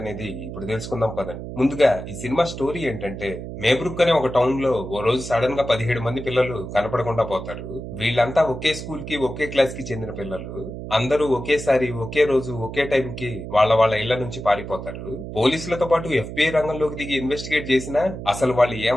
ఇప్పుడు తెలుసుకుందాం పదండి. ముందుగా ఈ సినిమా స్టోరీ ఏంటంటే, మేబ్రుక్ అనే ఒక టౌన్ లో ఓ రోజు సడన్ గా 17 మంది పిల్లలు కనపడకుండా పోతారు. వీళ్ళంతా ఒకే స్కూల్ కి ఒకే క్లాస్ కి చెందిన పిల్లలు. అందరూ ఒకేసారి ఒకే రోజు ఒకే టైం కి వాళ్ళ వాళ్ళ ఇళ్ల నుంచి పారిపోతారు. పోలీసులతో పాటు FBI రంగంలోకి దిగి ఇన్వెస్టిగేట్ చేసినా అసలు వాళ్ళు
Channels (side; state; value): right; noise; hum, 9 dB below the sound